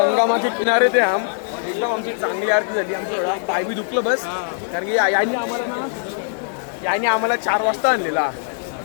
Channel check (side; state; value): right; silent; 65 dB below the other